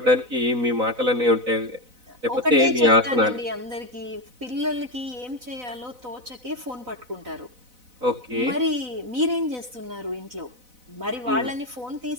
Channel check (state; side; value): late; left; 4.0 ms